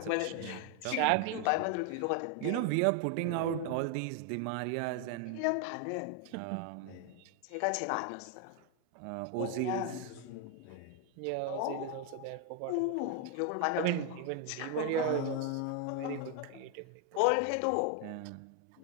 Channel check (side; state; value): both; different; correlation 0.01